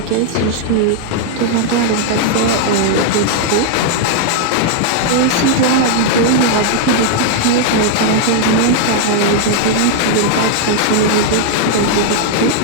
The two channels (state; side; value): different; both; correlation 0.00